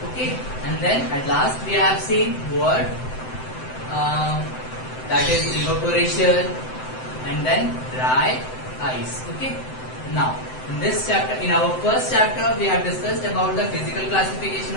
Okay, and then at last we have seen what that is evaporation and then dry ice. Okay, now in this chapter, in our first chapter we have discussed about the physical classification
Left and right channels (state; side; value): late; right; 7.8 ms